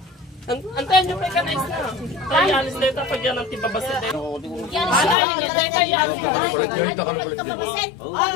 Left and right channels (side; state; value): right; drops out; at 5.2 s